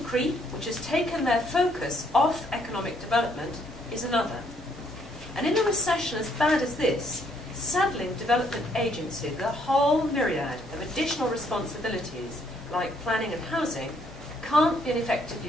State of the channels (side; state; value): both; normal; correlation 0.69